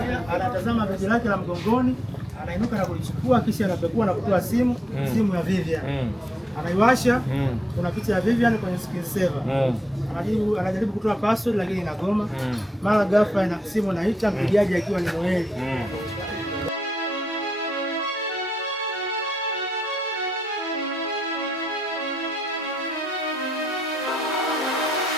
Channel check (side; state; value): both; normal; correlation 0.81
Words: Anatazama begi lake la mgongoni, anainuka na kulichukua, kisha anapekua na kutoa simu ya Vivian. Anaiwasha, kuna picha ya Vivian kwenye screen saver. Anajaribu kutoa password lakini inagoma. Mara ghafla ina simu inaita, mpigaji akiwa ni Noeli.